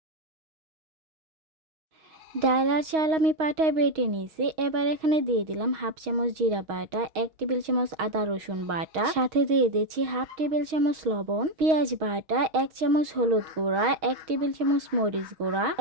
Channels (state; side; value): late; left; 6.3 ms